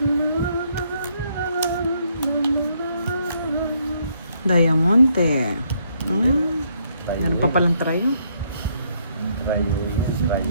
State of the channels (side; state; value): both; inverted; correlation -0.71